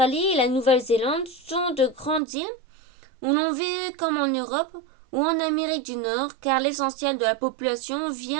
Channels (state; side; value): drops out; left; at 2.2 s